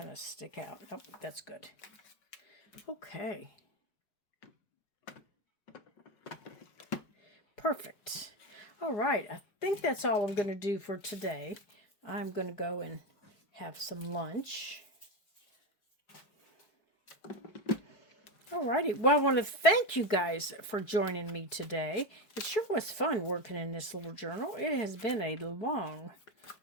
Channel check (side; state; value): right; late; 4.7 ms